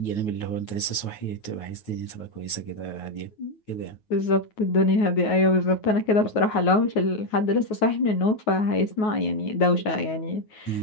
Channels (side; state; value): right; late; 9.4 ms